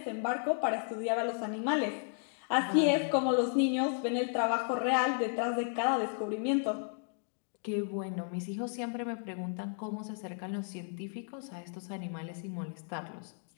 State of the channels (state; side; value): silent; right; 55 dB below the other